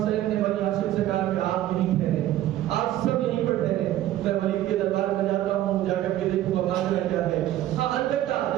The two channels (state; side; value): quieter; left; 13.5 dB